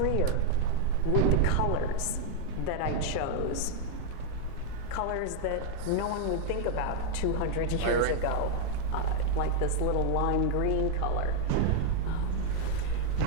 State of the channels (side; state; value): both; different; correlation 0.00